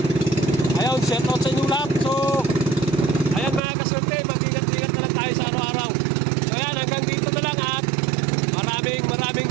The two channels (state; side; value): drops out; left; at 3.6 s